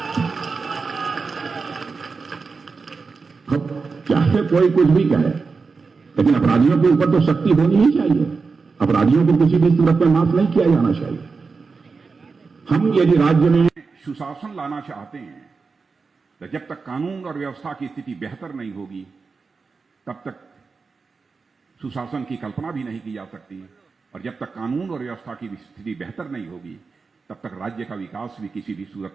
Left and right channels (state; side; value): quieter; left; 4.6 dB